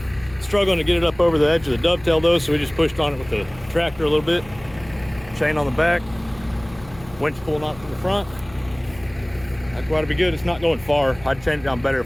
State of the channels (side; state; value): left; noise; hum, 20 dB below the sound